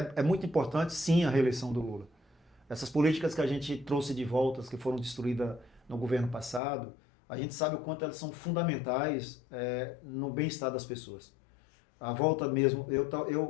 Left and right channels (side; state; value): right; drops out; at 6.6 s